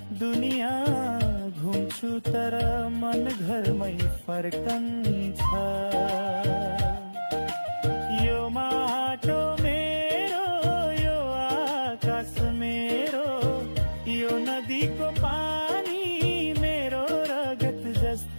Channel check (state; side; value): inverted; both; correlation -1.00